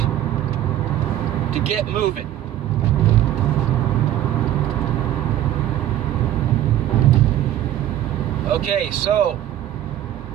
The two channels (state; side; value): quieter; left; 12.5 dB